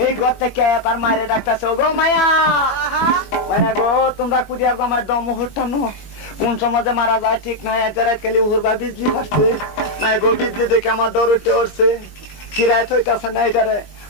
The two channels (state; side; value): late; right; 21 ms